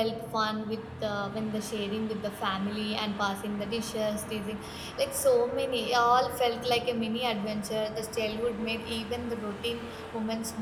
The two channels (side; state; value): both; identical; correlation 1.00